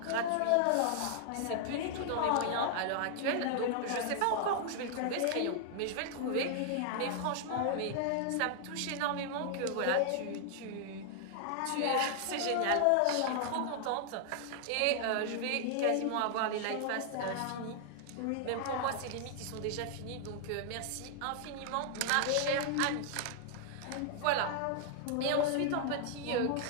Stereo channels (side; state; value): both; different; correlation 0.00